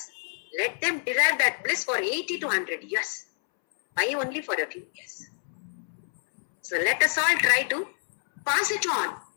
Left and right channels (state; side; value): silent; right; 60 dB below the other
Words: Let them derive that bliss for 80 to 100 years. Why only for a few years? So let us all try to pass it on